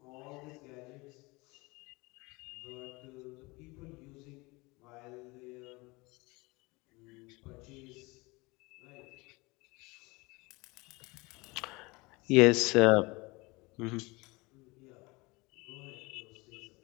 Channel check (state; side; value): quieter; right; 24.5 dB